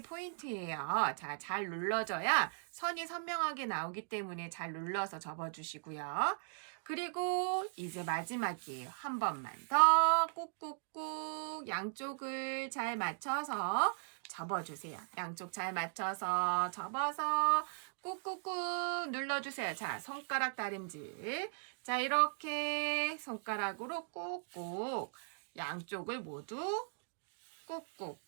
포인트예요. 자, 잘 눌러줘야 선이 선명하게 나오기 때문에 잘 눌러서 접어주시고요. 그리고 이제 마지막이에요. 한 번만 더 꾹꾹꾹 양쪽을 잘 맞춰서 접어주세요. 양쪽 잘 맞춰서 접어서 꾹꾹꾹 눌러주세요. 자, 손가락 다림질. 자, 이렇게 손가락으로 꾹꾹 양쪽을 모두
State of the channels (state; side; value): silent; left; digital silence